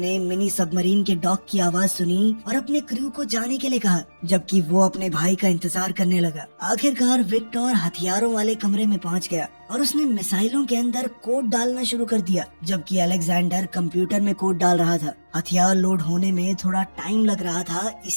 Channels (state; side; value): inverted; both; correlation -1.00